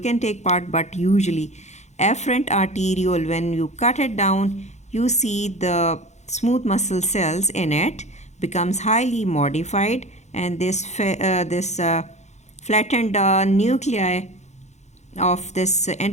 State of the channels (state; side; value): late; right; 0.33 ms